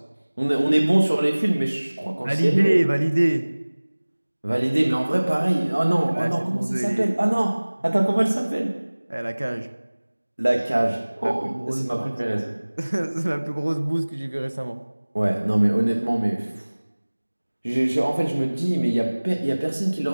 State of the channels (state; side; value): inverted; both; correlation -1.00